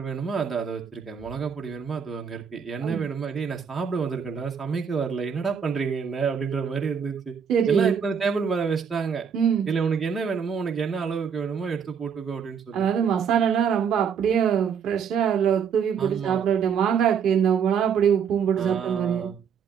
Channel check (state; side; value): quieter; left; 7.0 dB